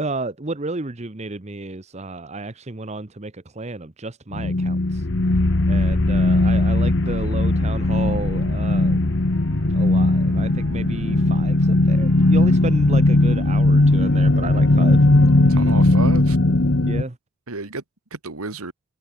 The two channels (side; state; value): both; normal; correlation 0.73